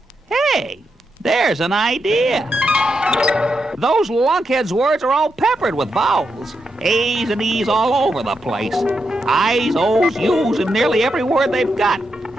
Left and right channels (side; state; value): both; normal; correlation 0.85